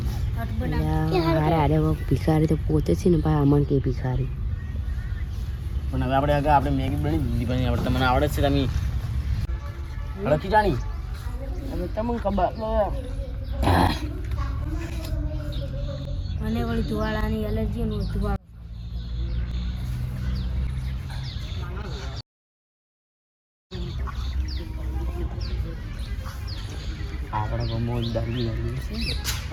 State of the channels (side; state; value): both; identical; correlation 1.00